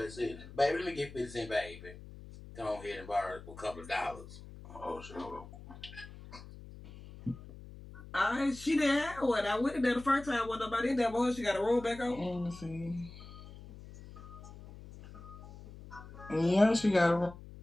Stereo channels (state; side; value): noise; left; hum, 16 dB below the sound